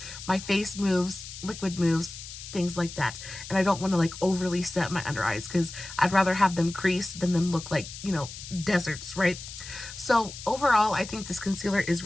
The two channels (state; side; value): noise; left; hiss, 12 dB below the sound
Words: My face moves, liquid moves, things like that, and I don't want to like overly set my under eyes because I'd rather have them crease than them look like, you know, deserts, right? So overall, I think this concealer is